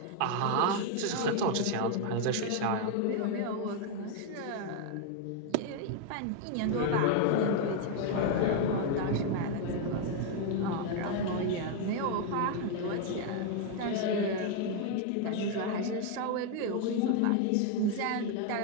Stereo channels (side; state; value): both; different; correlation 0.01